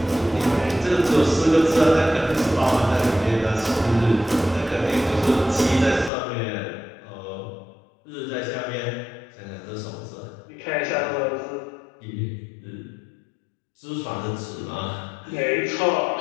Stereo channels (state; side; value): drops out; right; at 6.1 s